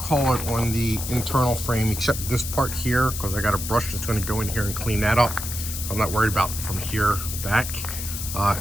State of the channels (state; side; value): noise; left; hiss, 6 dB below the sound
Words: it on the internal frame, except this part here, because I got a brush that's gonna go in here and clean that up. So I'm not worried about from here back.